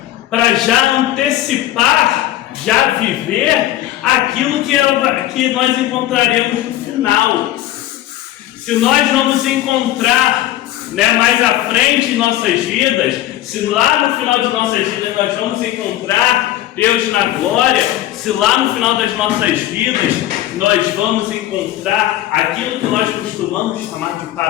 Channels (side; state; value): right; quieter; 14.1 dB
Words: para já antecipar, já viver aquilo que nós encontraremos no final. Se nós não nos encontrar mais à frente em nossas vidas, se lá no final de nossas vidas nós vamos encontrar Deus na glória, se lá no final das nossas vidas nós vamos encontrar aquilo que nós costumamos chamar de